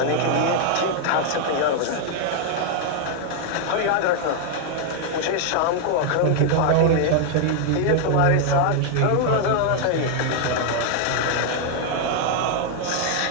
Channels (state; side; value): different; both; correlation 0.00